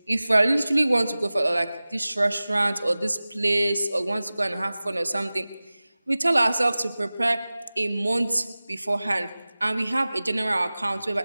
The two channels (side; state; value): both; inverted; correlation -0.98